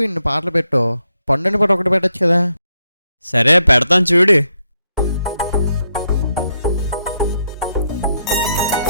ఇన్ని పాటలు పెట్టు, పండుని పాట ఒకటి పెట్టచ్చు కదా. సరే పెడతాను చూడు.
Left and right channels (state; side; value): inverted; both; correlation -0.78